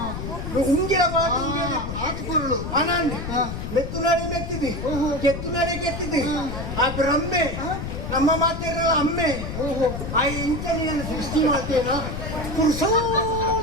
ఉంగిల బాటు ఆకుకూరలు అనండి మెత్తునాడే మెత్తిది ಕೆತ್ತುನಾಡೆ ಕೆತ್ತಿದಿ ಆ ಬ್ರಹ್ಮೆ ನಮ್ಮ ಮಾತಿರಲ್ಲ ಅಮ್ಮೆ ಆ ಇಂಚನೆಯನ್ನು ಸೃಷ್ಟಿ ಮಾಡ್ತೇನ ಪುರುಷೋ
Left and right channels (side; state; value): left; noise; rumble, 6 dB below the sound